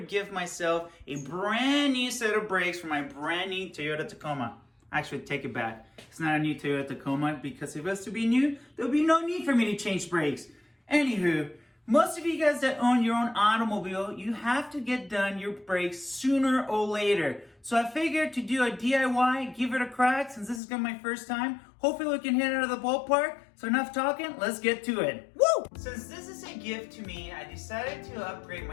give myself a brand new set of brakes for my brand new Toyota Tacoma. Actually, take it back. It's not a new Toyota Tacoma because if it was to be new, there'll be no need for me to change brakes. Anywho, most of you guys that own your own automobile, you have to get done your brakes sooner or later. So I figured to do a DIY, give it a crack since this is gonna be my first time. Hopefully we can hit it out of the ballpark. So enough talking, let's get to it. Woo! Since this is a gift to me, I decided to upgrade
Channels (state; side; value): drops out; right; at 20.6 s